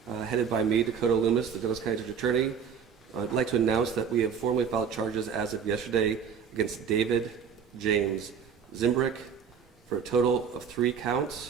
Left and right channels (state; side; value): quieter; left; 7.0 dB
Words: headed by me, Dakota Loomis, the Douglas County District Attorney, I'd like to announce that we have formally filed charges as of yesterday against David James Zimbrick for a total of 3